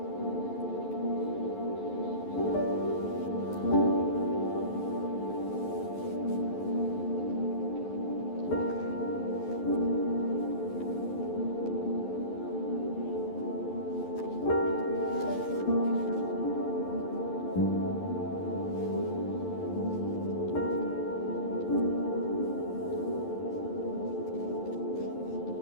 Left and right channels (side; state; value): right; late; 11 ms